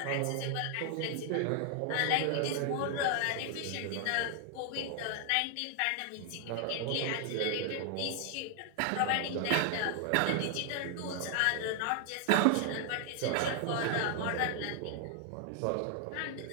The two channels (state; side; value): different; both; correlation 0.00